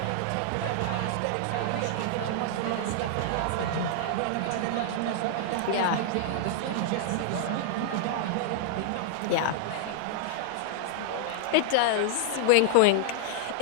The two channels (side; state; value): both; different; correlation -0.01